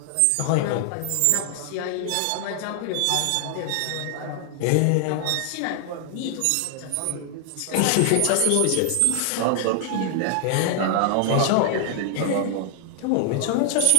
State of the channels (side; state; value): both; different; correlation 0.00